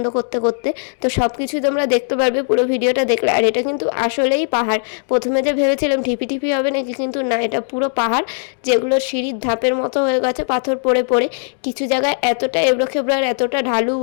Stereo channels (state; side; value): silent; right; digital silence